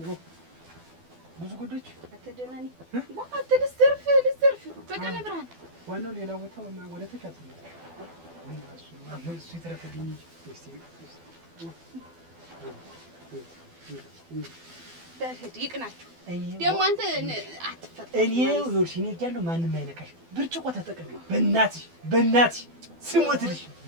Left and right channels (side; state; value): left; late; 12 ms